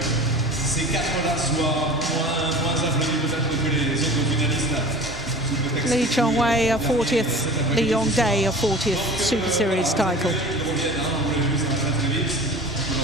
Lee Chong-wei a 40th, Lee Yong-dae a 40th Super Series title.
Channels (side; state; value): both; normal; correlation 0.39